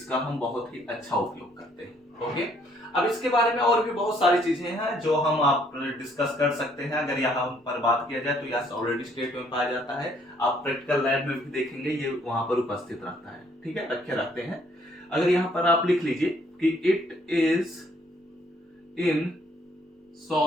हम बहुत ही अच्छा उपयोग करते हैं। ओके, अब इसके बारे में और भी बहुत सारी चीजें हैं जो हम आप डिस्कस कर सकते हैं। अगर यहाँ पर बात किया जाए तो यह ऑलरेडी स्टेट में पाया जाता है, आप प्रैक्टिकल लैब में भी देखेंगे ये वहां पर उपस्थित रहता है। ठीक है, रखे रहते हैं। अगर यहाँ पर आप लिख लीजिए कि it is in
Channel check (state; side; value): normal; both; correlation 0.65